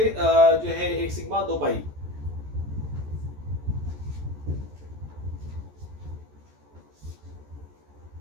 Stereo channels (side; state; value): left; late; 14 ms